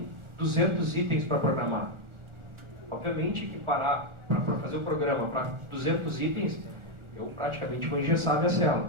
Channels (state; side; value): late; left; 1.4 ms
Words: 200 itens para programar. Obviamente que parar para fazer o programa para 200 itens, eu praticamente vou engessar minha